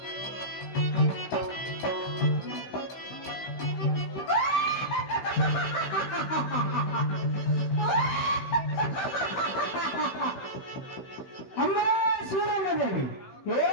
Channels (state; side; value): late; right; 16 ms